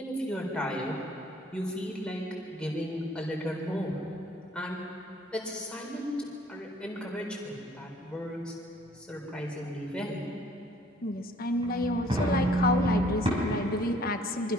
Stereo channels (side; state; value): both; normal; correlation 0.59